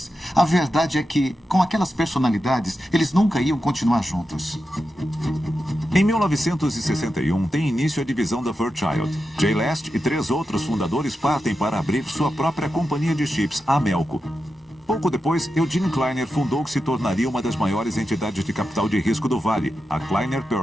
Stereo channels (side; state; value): both; normal; correlation 0.89